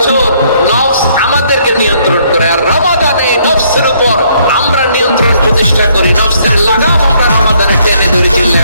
নফস আমাদেরকে নিয়ন্ত্রণ করে, আর রমাদানে নফসের উপর আমরা নিয়ন্ত্রণ প্রতিষ্ঠা করি। নফসের লাগাম আমরা রমাদানে টেনে ধরে।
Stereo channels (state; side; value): inverted; both; correlation -0.67